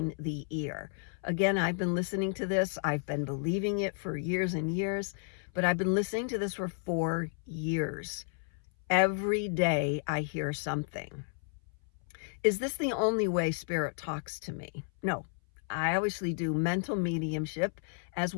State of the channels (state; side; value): silent; right; 56 dB below the other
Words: the ear. Again, I've been listening to this. I've been believing it for years and years, but I've been listening to this for 4 years. Every day I hear something. Is this the only way spirit talks to me? No. I obviously do mental mediumship as